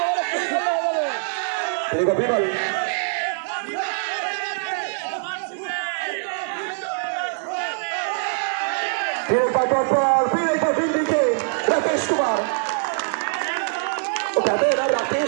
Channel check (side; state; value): left; silent; 62 dB below the other